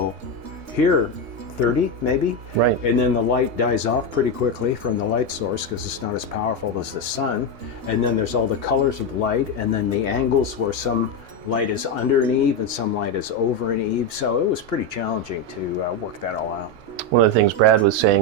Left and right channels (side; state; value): left; late; 3.3 ms